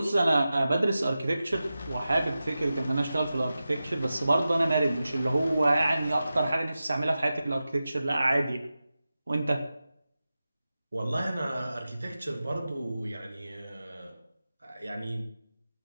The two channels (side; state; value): both; inverted; correlation -0.93